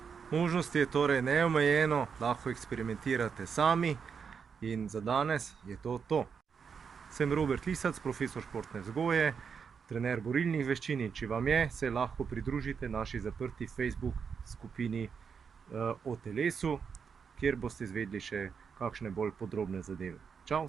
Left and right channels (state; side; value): quieter; left; 6.3 dB